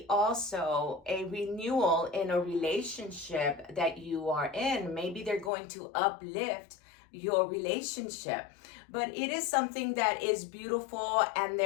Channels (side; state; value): right; drops out; at 5.5 s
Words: also a renewal in a relationship that you are in. Maybe they're going to uplift your relationship, but it is something that is beautiful, and